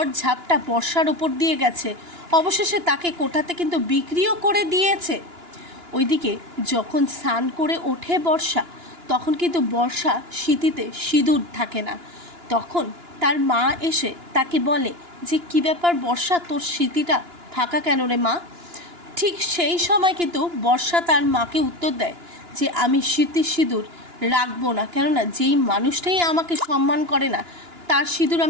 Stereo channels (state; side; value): late; left; 2.9 ms